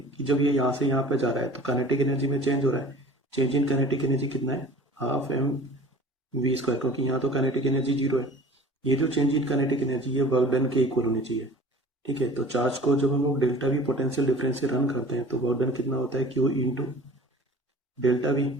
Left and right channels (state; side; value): normal; both; correlation 0.44